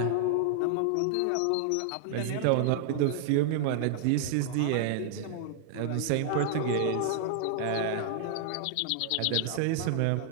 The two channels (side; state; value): both; different; correlation -0.01